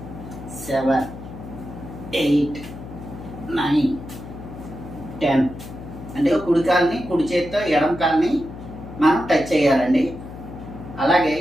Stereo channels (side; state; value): left; noise; hum, 13 dB below the sound